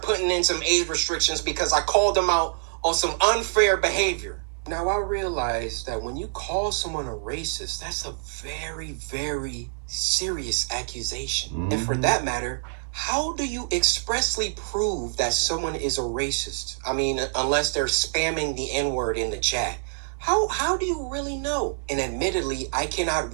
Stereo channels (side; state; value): left; silent; digital silence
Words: putting in some age restrictions because I called them out on some unfair behavior. Now, I realize that when you call someone a racist, that's a very, very serious accusation. Mm-hmm. And for that matter, how do you expressly prove that someone is a racist? I mean, unless they're spamming the N-word in the chat. How do you really know? And admittedly, I cannot